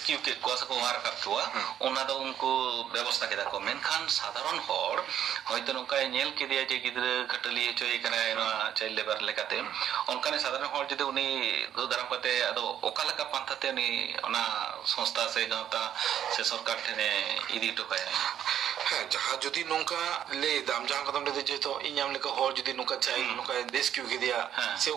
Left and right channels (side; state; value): left; quieter; 10.1 dB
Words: কে কোয়া সে কো ওয়ার রাখাব কোয়া ওনা তো উনকু ব্যবস্থা কেদা কো মেনখান সাধারণ হর হয়তো নকায় নেল কে দিয়া যে গিদরে ঘটলি চই এখানে চাইল্ড লেবার লেকাতে অনকানে সাধারণ হর যদি উনি দো দারাম কাতে আদো ওকালাকা পান্থাতে উনি ওনা সংস্থা সে গাঁওতা সে সরকার ঠেনে ইদি টকায় হ্যাঁ যাহা যদি নৌকা লে দাম যাহা কদম লে যেত ইኛম লেকা হর যদি নৌকা চাই নৌকা রেস্কিউ কে দিয়া সে